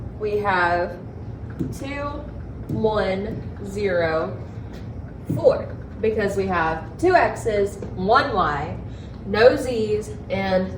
we have 2, 1, 0, 4, because we have 2 x's, 1 y, no z's, and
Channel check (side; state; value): both; identical; correlation 1.00